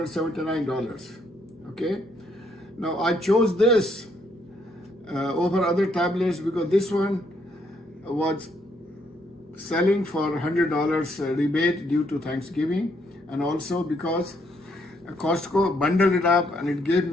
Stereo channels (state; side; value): normal; both; correlation 0.72